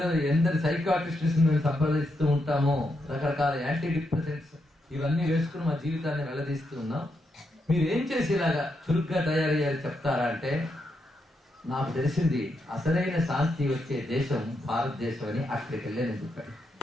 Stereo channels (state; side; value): normal; both; correlation 0.82